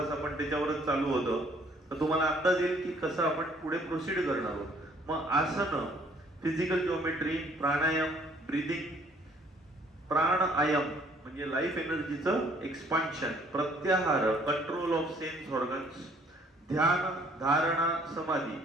आपण त्याच्यावरच चालू होतं. तर तुम्हाला अंदाज येईल की कसं आपण पुढे प्रोसीड करणार आहोत. मग आसन, फिजिकल जिओमेट्री, प्राणायाम, ब्रीदिंग, प्राणायाम म्हणजे लाईफ एनर्जीचं एक्सपान्शन, प्रत्याहार, कंट्रोल ऑफ सेन्स ऑर्गन्स, ध्यान, धारणा, समाधी.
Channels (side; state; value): both; normal; correlation 0.60